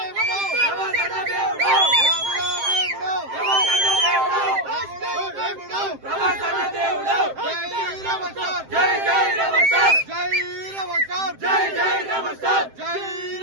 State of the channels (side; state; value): left; late; 7.6 ms